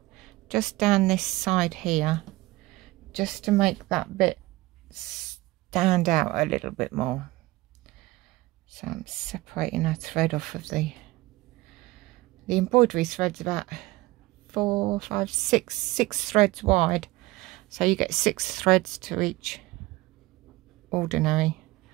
just down this side here, just to make that bit stand out a little bit more. So I'm separating a thread off of the embroidery thread's about 4, 5, 6 threads wide. So you get 6 threads to each ordinary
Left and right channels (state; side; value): quieter; left; 19.6 dB